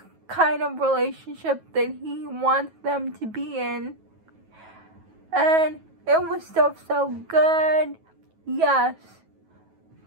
kind of relationship that he wants them to be in. And it was still so good. Yes,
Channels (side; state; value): left; late; 9.3 ms